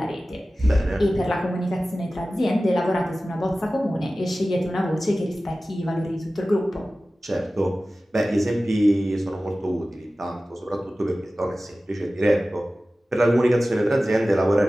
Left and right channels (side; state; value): both; normal; correlation 0.96